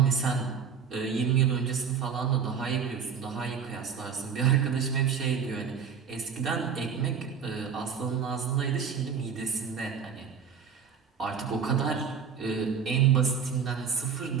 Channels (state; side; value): quieter; left; 6.7 dB